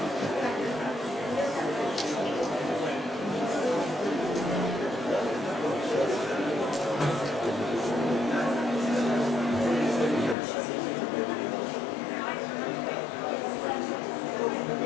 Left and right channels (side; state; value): right; drops out; at 10.4 s